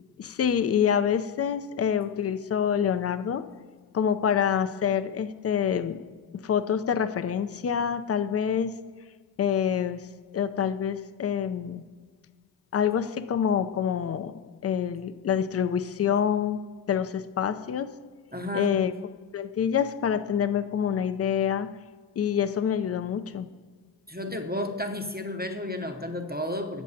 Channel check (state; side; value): quieter; right; 7.4 dB